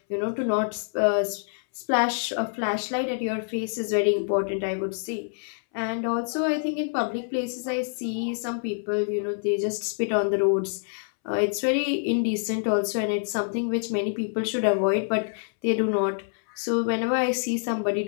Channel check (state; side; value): silent; right; 61 dB below the other